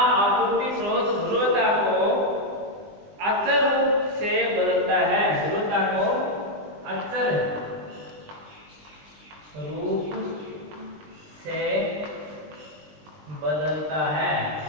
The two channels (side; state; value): left; late; 20 ms